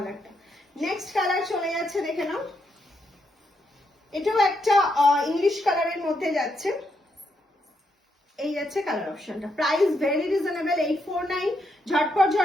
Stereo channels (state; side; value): normal; both; correlation 0.79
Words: নেক্সট কালার চলে যাচ্ছে দেখে নাও, এটাও একটা ইংলিশ কালারের মধ্যে যাচ্ছে। এই যাচ্ছে কালার অপশনটা। Price very reasonable 849। ঝটপট